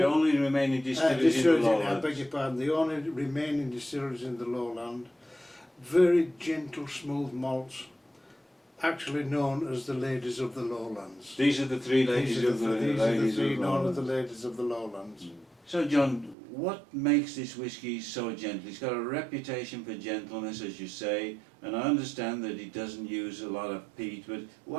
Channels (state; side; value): drops out; left; at 16.4 s